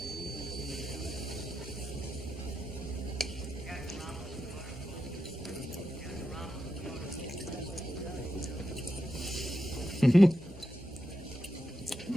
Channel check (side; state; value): both; normal; correlation 0.87